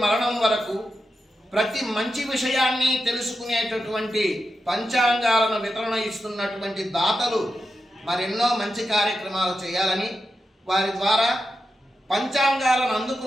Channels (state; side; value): normal; both; correlation 0.89